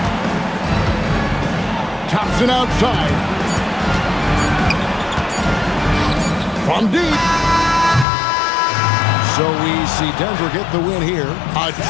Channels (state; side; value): drops out; right; at 8.1 s